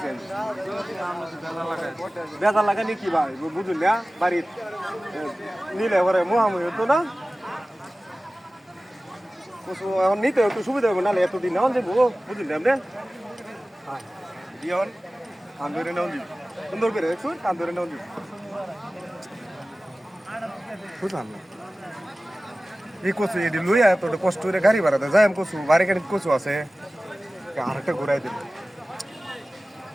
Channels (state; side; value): normal; both; correlation 0.97